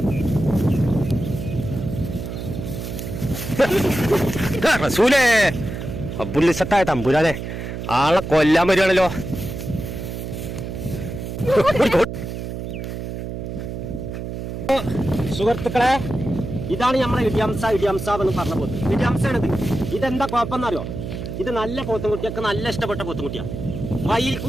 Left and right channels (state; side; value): noise; right; hum, 6 dB below the sound